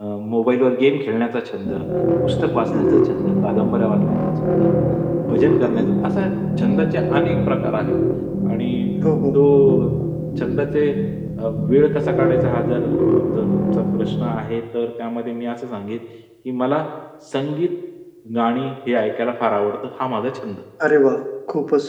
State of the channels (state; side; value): identical; both; correlation 1.00